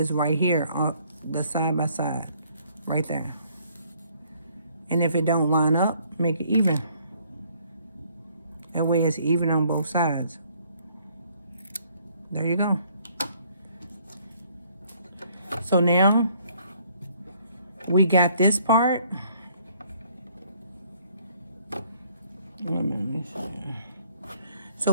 right here on the side by side, right there. And if it don't line up, make it even. That way it's even on both sides. There you go. So now we got this part.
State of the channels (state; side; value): inverted; both; correlation -0.64